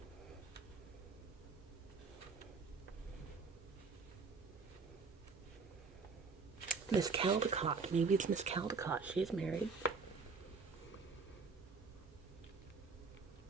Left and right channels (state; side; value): quieter; left; 4.7 dB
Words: Miss Caldecott. Maybe it's Miss Caldecott. She's married.